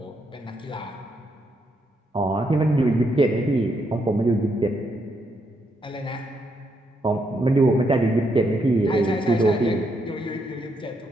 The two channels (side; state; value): both; normal; correlation 0.78